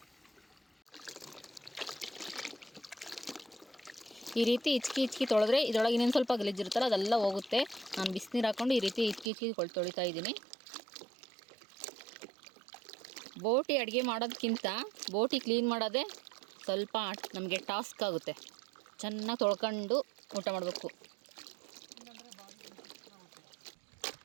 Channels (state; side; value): drops out; left; at 9.3 s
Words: ಈ ರೀತಿ ಇಚ್ಕಿ ತೊಳೆದ್ರೆ ಇದರೊಳಗೆ ಇನ್ನೊಂದು ಸ್ವಲ್ಪ ಗಲೀಜಿರುತ್ತಲ್ಲ ಅದೆಲ್ಲ ಹೋಗುತ್ತೆ. ನಾನು ಬಿಸಿನೀರು ಹಾಕ್ಕೊಂಡು ಈ ರೀತಿ ಇಚ್ಕಿ ತೊಳಿತಾ ಇದ್ದೀನಿ. ಬೋಟಿ ಅಡುಗೆ ಮಾಡೋದಕ್ಕಿಂತ ಬೋಟಿ ಕ್ಲೀನ್ ಮಾಡೋದೇ ಸ್ವಲ್ಪ ನಮಗೆ ಟಾಸ್ಕ್ ಆಗುತ್ತೆ. ಚೆನ್ನಾಗಿ ತೊಳ್ಕೊಂಡು ಊಟ ಮಾಡಬೇಕು.